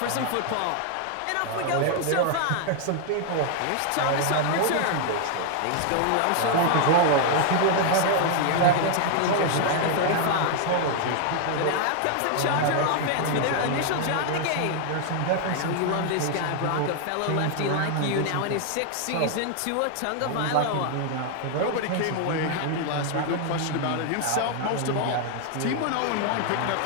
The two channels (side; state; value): both; different; correlation 0.00